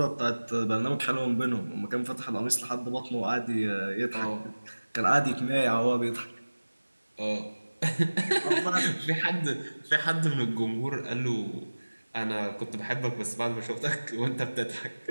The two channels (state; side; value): inverted; both; correlation -1.00